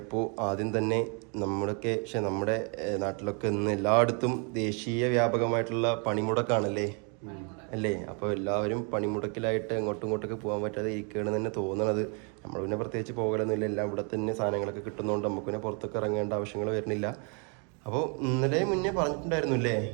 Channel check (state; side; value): quieter; left; 36.5 dB